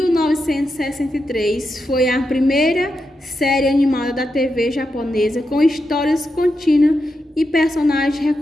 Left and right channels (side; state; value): both; normal; correlation 0.86